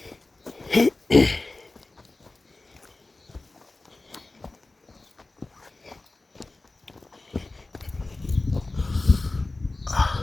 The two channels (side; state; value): right; quieter; 3.2 dB